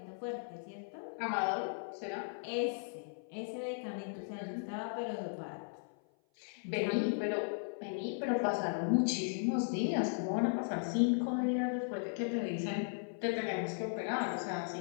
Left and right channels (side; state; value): right; silent; 53 dB below the other